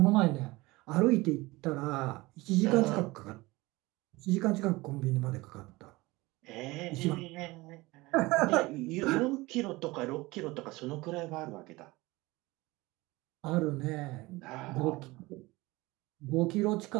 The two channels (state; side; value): quieter; left; 21.3 dB